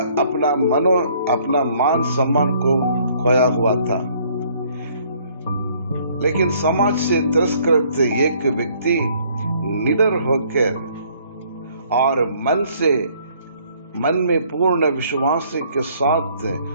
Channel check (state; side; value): inverted; both; correlation -0.62